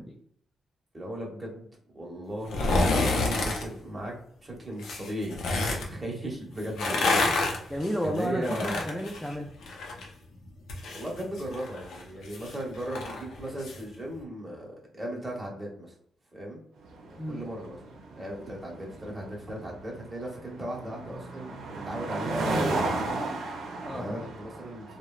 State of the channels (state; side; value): normal; both; correlation 0.78